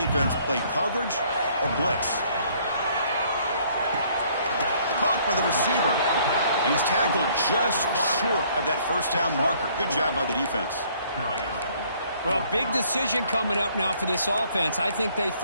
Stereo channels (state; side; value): inverted; both; correlation -0.62